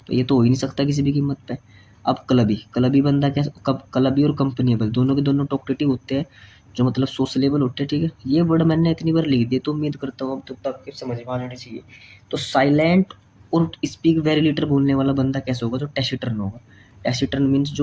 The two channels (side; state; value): both; identical; correlation 1.00